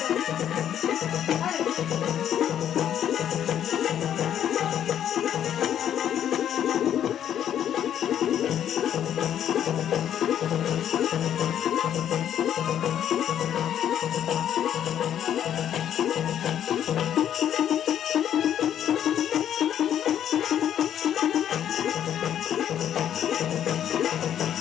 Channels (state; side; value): quieter; right; 10.1 dB